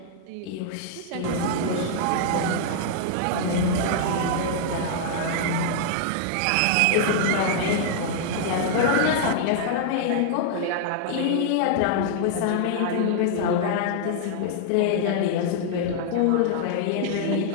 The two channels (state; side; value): different; both; correlation -0.01